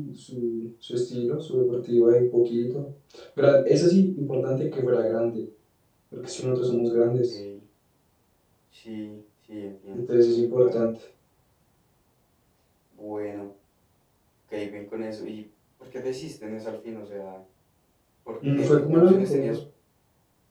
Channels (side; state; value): both; identical; correlation 1.00